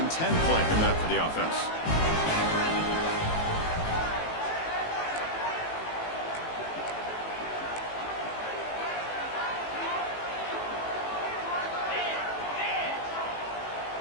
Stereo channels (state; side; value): late; right; 18 ms